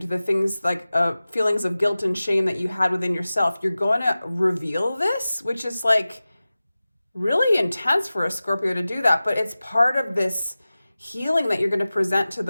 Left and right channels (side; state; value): both; inverted; correlation -0.96